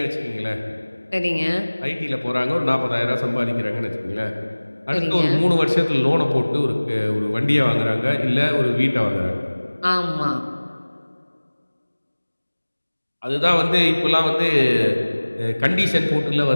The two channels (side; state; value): both; inverted; correlation -1.00